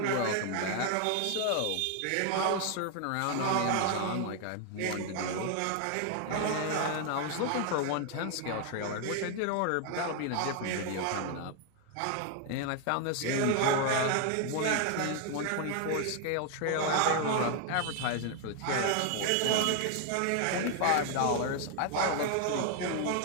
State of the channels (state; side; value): different; both; correlation 0.00